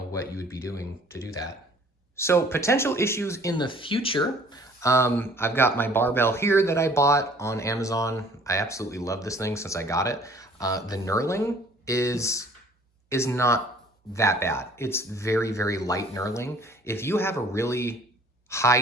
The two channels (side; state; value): both; normal; correlation 0.54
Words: what you would be doing to do that. So potential issues in the future. I've got my barbell here that I bought on Amazon. I absolutely love this thing since I got it. The knurling is not that bad. It's very, very light knurling. If you have a really high